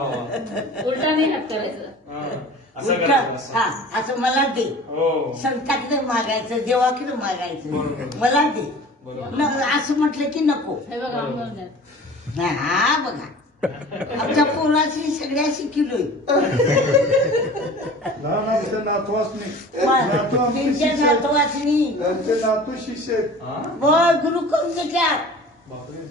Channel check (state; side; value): normal; both; correlation 0.42